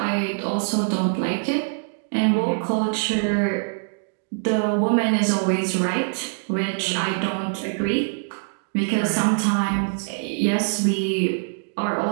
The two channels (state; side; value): silent; left; digital silence